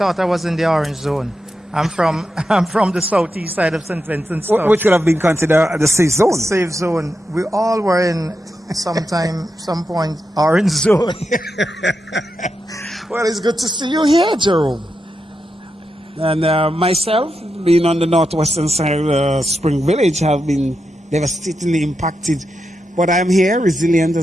I was in the orange zone. I'm from the southeast side of St. Vincent. Which could have been considered the safe zone. Safe zone. We all were in some point, orange zone. Well, it's good to see you here, Jerome. And myself, being on the northwestern side of Spring Village, have been devastatingly impacted. But I'm here, resilient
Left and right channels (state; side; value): normal; both; correlation 0.87